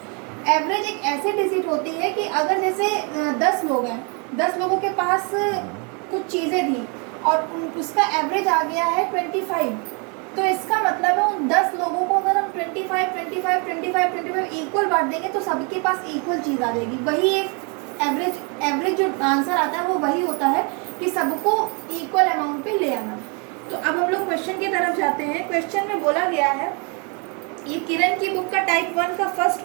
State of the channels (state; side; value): quieter; left; 34.7 dB